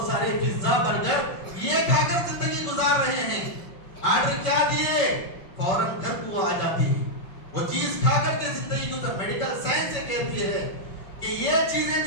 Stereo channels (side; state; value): right; late; 5.2 ms